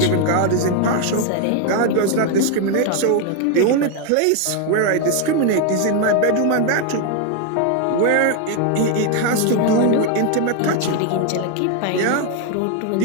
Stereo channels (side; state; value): both; different; correlation 0.01